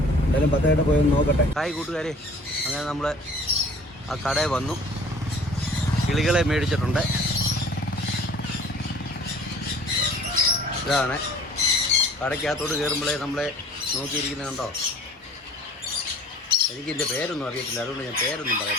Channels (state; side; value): normal; both; correlation 0.49